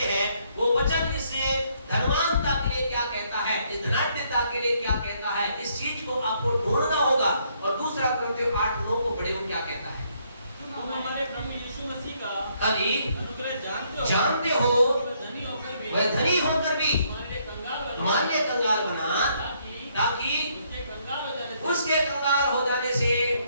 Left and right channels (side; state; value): both; inverted; correlation -0.70